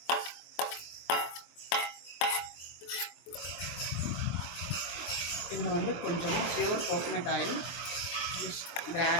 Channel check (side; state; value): right; late; 23 ms